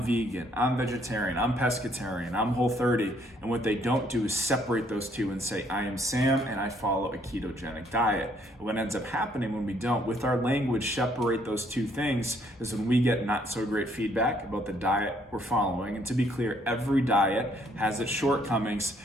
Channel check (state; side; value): normal; both; correlation 0.66